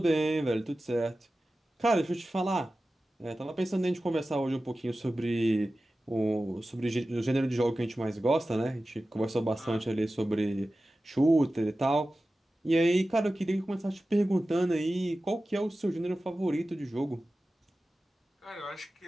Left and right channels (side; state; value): both; normal; correlation 0.95